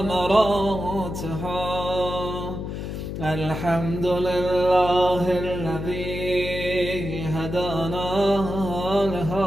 الحمد لله الذي هدانا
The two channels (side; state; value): left; noise; hum, 6 dB below the sound